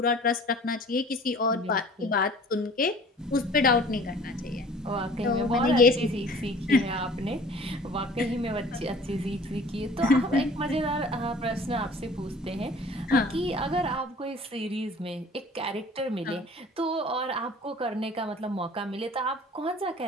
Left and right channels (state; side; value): normal; both; correlation 0.48